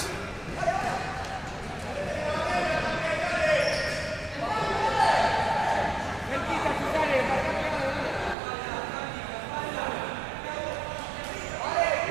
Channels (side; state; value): left; drops out; at 8.3 s